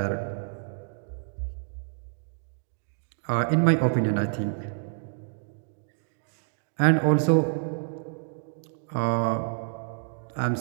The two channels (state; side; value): silent; left; digital silence